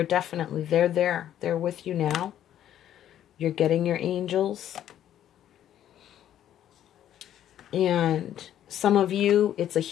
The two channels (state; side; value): quieter; right; 11.2 dB